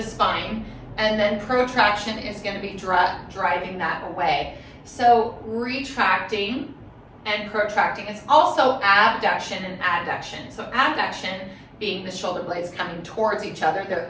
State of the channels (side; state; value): both; identical; correlation 1.00